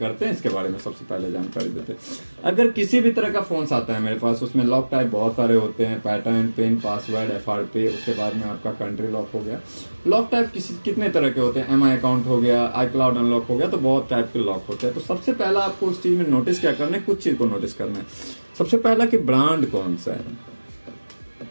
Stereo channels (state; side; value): inverted; both; correlation -1.00